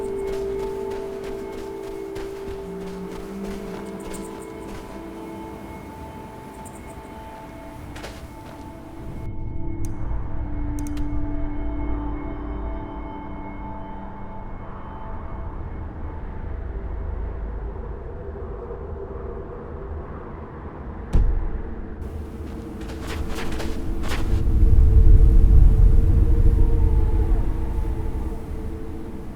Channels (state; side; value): identical; both; correlation 1.00